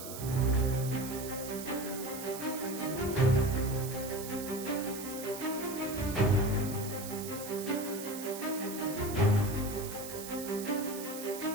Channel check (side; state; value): right; noise; hiss, 10 dB below the sound